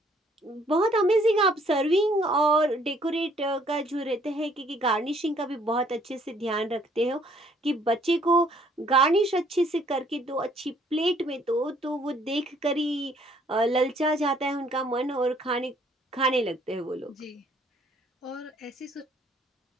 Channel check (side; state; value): both; normal; correlation 0.63